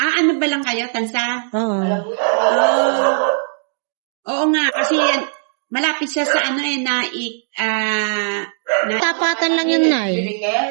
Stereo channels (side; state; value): left; silent; digital silence